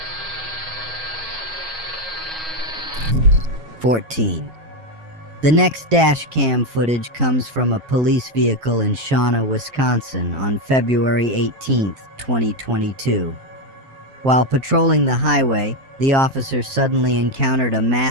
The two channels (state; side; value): late; left; 7.5 ms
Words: The next dash cam footage comes from a police vehicle in Shawnee, Wisconsin on February 18th, 2022. While patrolling the highway, the officer suddenly encountered a